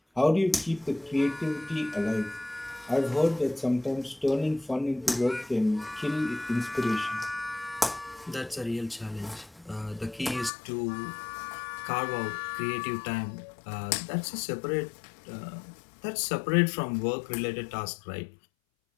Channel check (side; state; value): right; drops out; at 10.5 s